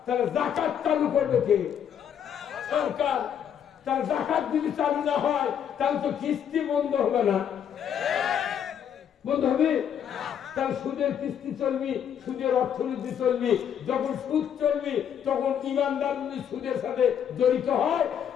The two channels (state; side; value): quieter; right; 8.7 dB